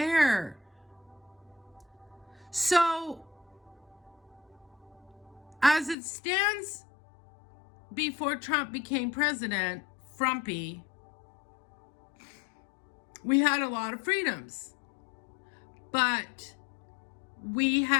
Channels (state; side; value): drops out; right; at 6.0 s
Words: So, as it stands before Trump became president, Frumpy, we had a lot of freedoms. But we